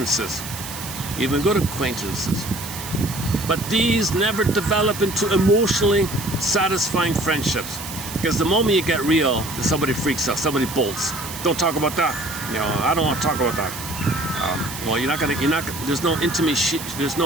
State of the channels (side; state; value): right; noise; hiss, 10 dB below the sound